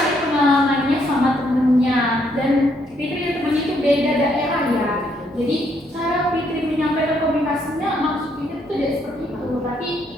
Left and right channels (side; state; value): both; normal; correlation 0.72